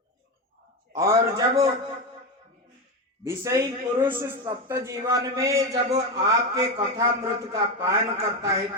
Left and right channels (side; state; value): both; normal; correlation 0.14